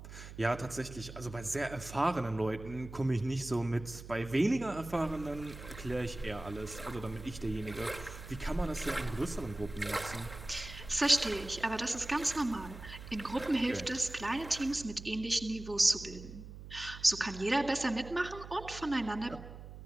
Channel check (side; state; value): right; noise; hum, 13 dB below the sound